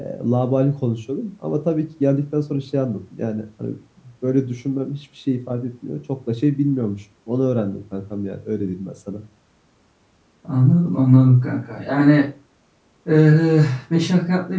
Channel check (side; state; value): both; identical; correlation 1.00